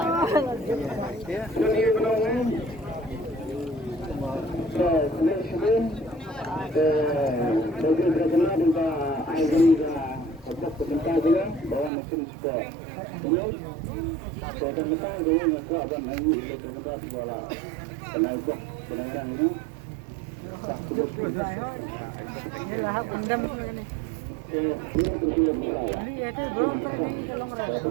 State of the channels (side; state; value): left; drops out; at 11.9 s